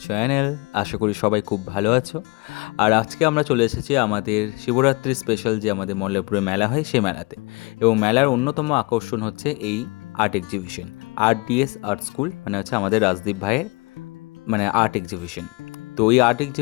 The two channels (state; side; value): quieter; right; 26.5 dB